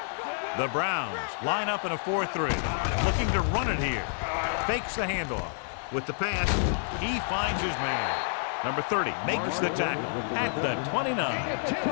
go, boys. The Browns line up in a 4-3. Looking to run it here. Fakes the handoff. With the pass, he finds his man. Number 30 makes the tackle at the 29.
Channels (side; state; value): right; silent; 59 dB below the other